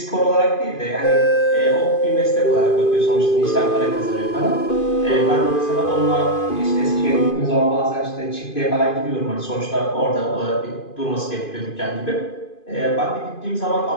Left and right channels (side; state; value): right; late; 2.5 ms